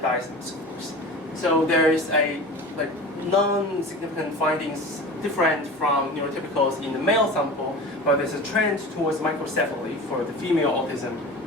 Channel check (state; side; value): normal; both; correlation 0.35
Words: scores. So there is a non-significant findings different from neurotypicals in the male sample, but there's a trend towards microcephaly for the female autism